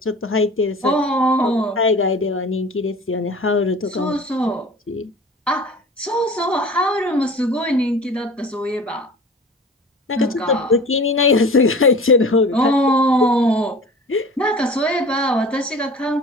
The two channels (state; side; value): normal; both; correlation 0.41